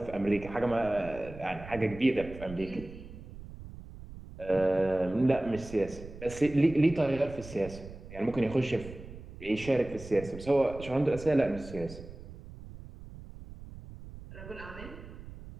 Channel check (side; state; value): right; noise; rumble, 14 dB below the sound